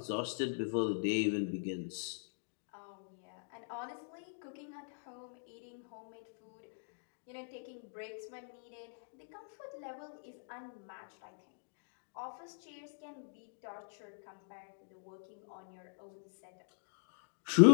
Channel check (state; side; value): silent; right; digital silence